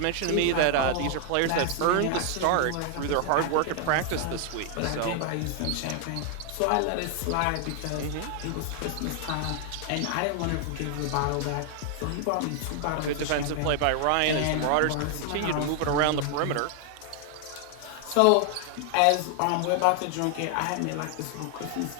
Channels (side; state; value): both; different; correlation 0.00